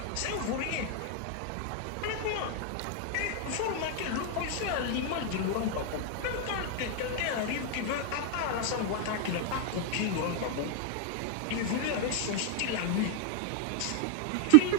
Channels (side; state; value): both; different; correlation 0.00